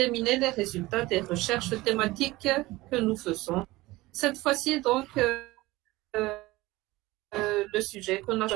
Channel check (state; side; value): quieter; left; 19.6 dB